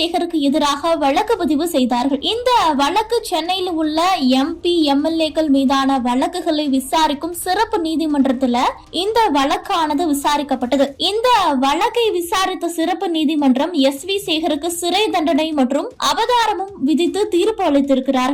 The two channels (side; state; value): both; identical; correlation 1.00